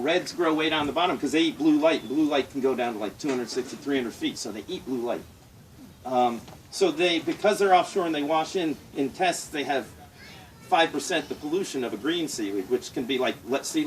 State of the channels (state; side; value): identical; both; correlation 1.00